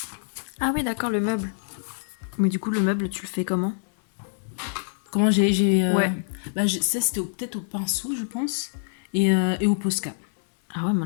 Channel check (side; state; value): right; silent; 61 dB below the other